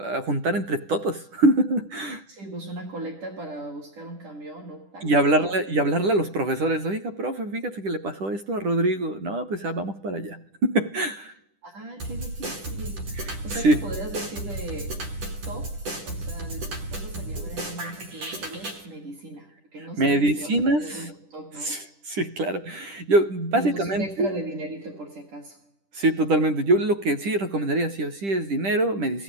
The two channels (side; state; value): left; late; 10 ms